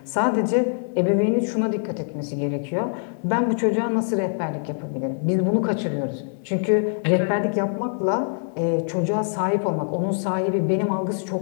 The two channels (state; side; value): silent; right; digital silence